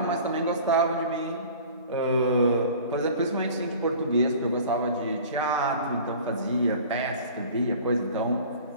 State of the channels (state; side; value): inverted; both; correlation -0.44